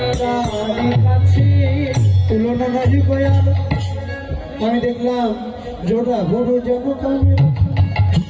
তারই কাছে। তুলনা নাহি গয়াল। আমি দেখলাম জোড়া ভোর যেন কামের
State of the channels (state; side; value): identical; both; correlation 1.00